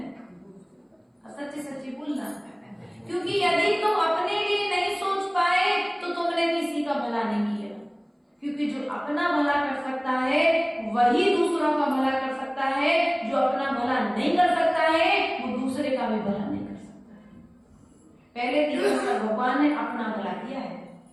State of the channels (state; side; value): identical; both; correlation 1.00